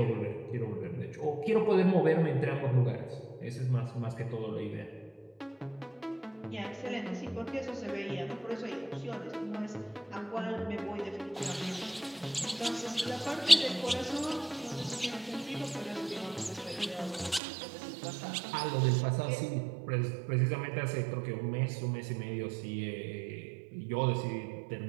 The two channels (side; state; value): left; drops out; at 17.4 s